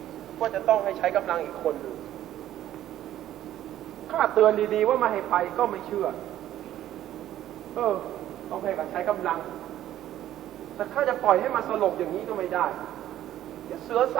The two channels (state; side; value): quieter; left; 12.6 dB